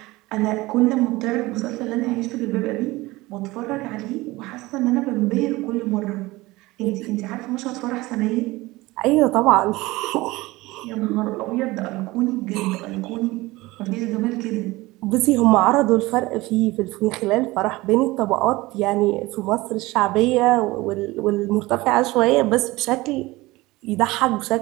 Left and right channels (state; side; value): quieter; left; 20.3 dB